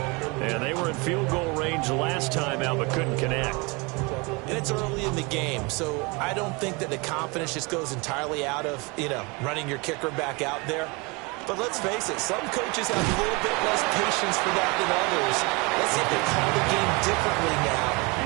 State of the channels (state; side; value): quieter; left; 27.8 dB